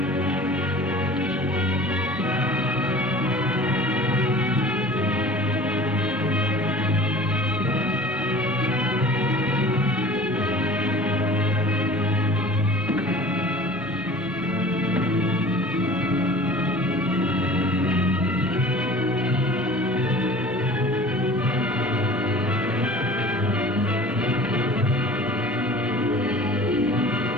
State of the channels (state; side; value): normal; both; correlation 0.44